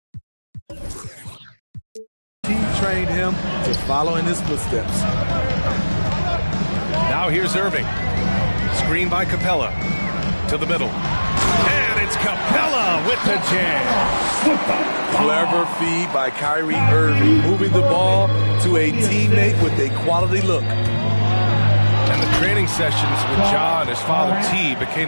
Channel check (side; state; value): both; inverted; correlation -1.00